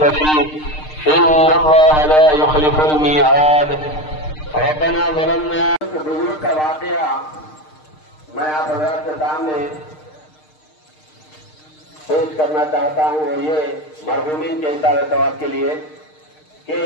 फीह इन्नल्लाह ला युख़्लिफ़ुल मिईआद। रब्बना ज़लमना। बुजुर्ग का वाक़या मैं आप हज़रात के सामने पेश करना चाहता हूँ और ये मरहूमीन के इशारे सवाब के लिए कि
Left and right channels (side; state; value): right; late; 6.5 ms